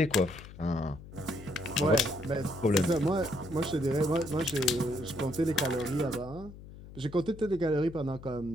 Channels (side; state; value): left; noise; hum, 16 dB below the sound